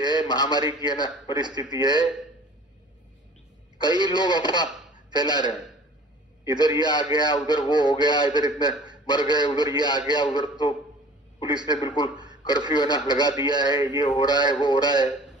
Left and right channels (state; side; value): normal; both; correlation 0.46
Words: महामारी की है ना परिस्थिति है, कई लोग अफवाह फैला रहे हैं, इधर ये आ गया, उधर वो हो गया, इधर इतने मर गए, उधर ये आ गया, उधर तो पुलिस ने बिल्कुल कर्फ्यू है ना लगा दिया है, ये हो रहा है वो हो रहा है।